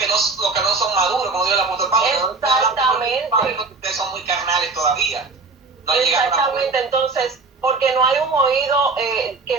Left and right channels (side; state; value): left; quieter; 4.0 dB